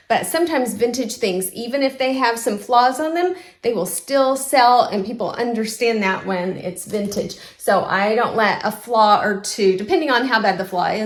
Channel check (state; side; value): identical; both; correlation 1.00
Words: But sometimes vintage things, even if they have some flaws on them, they will still sell, and people understand that when it's vintage. So I don't let a flaw or two, depending on how bad the flaw